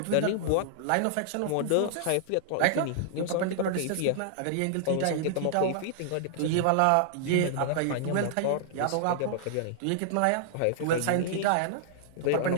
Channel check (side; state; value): both; different; correlation -0.01